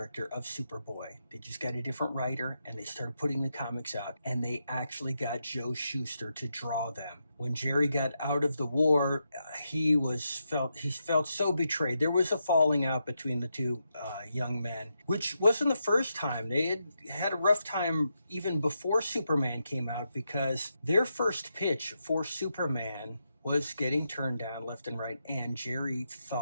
of Superboy. They just got a different writer, and they started putting the comics out, and they actually got Joe Shuster to draw them. When Jerry got out of the war, he felt so betrayed. There was a falling out between the two young men, which wasn't the first time. They had a rough time even before Superman came out, because their first pitch for Superman was getting turned down left and right, and Jerry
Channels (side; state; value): both; inverted; correlation -0.84